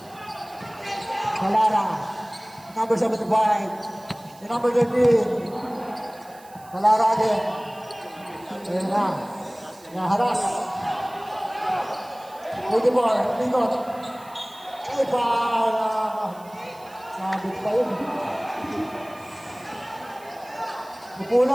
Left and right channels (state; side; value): noise; right; hiss, 24 dB below the sound